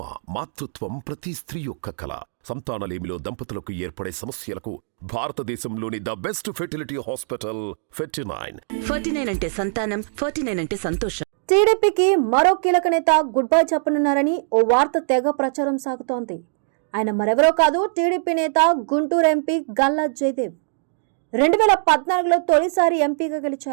మాతృత్వం ప్రతి స్త్రీ యొక్క కల. సంతానలేమిలో దంపతులకు ఏర్పడే సమస్యలకు భారతదేశంలోని the best fertility hospital Fertinine. Fertinine అంటే సంతానం, ఫెర్టినైన్ అంటే సంతోషం. టీడీపీకి మరో కీలక నేత గుడ్ బై చెప్పనున్నారని ఓ వార్త తెగ ప్రచారం సాగుతోంది. ఆయన మరెవరో కాదు, టీడీపీ నేత గుంటూరు ఎంపీ గల్లా జయదేవ్. 2014లో తొలిసారి ఎంపీగా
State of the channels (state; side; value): silent; left; digital silence